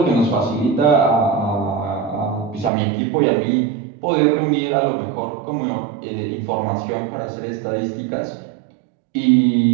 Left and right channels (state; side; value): drops out; left; at 2.7 s